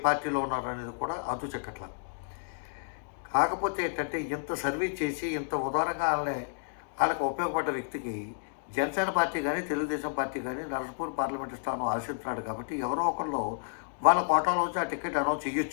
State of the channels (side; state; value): right; silent; digital silence